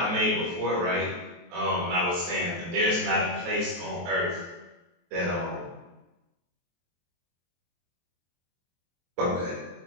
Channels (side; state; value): left; late; 23 ms